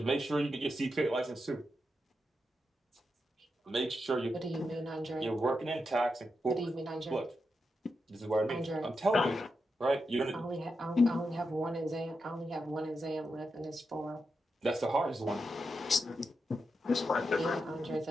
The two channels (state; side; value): normal; both; correlation 0.86